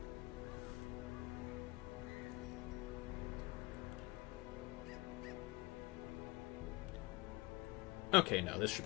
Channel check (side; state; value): right; quieter; 21.4 dB